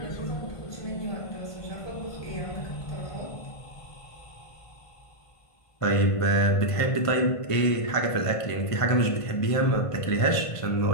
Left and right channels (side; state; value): right; late; 1.5 ms